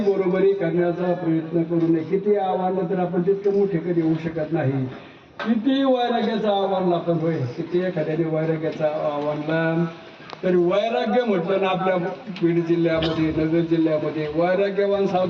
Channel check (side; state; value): both; identical; correlation 1.00